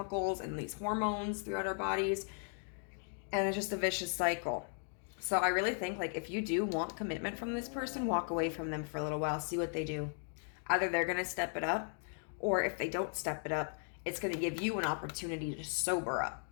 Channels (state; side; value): silent; right; 53 dB below the other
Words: and these hormones throughout our bodies, and it's just a vicious cycle. So I really think, like, if you do want commitment from this person, walk away from them for a little while, see what they do. Either they're going to step it up, or if they don't step it up, it's going to give you an opportunity to sober up.